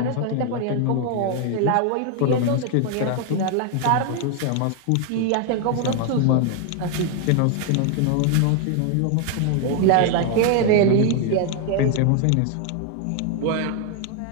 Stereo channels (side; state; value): both; different; correlation 0.00